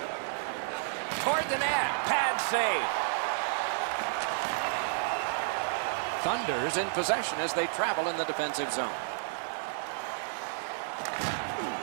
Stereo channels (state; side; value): silent; left; digital silence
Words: Toward the net. Pad save. Thunder's in possession as they travel in the defensive zone.